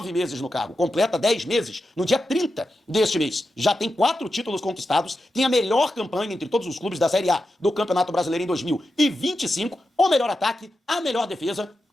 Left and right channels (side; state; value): both; normal; correlation 0.89